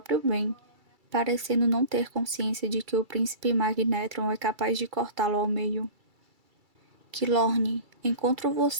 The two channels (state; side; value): late; left; 2.3 ms